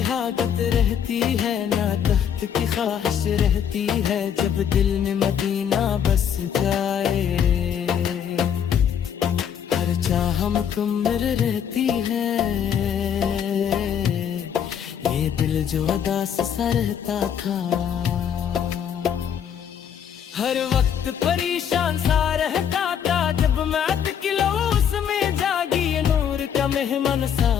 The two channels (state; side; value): quieter; right; 8.5 dB